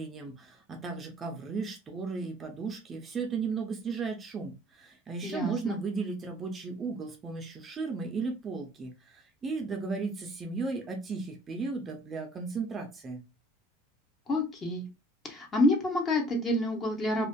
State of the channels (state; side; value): normal; both; correlation 0.57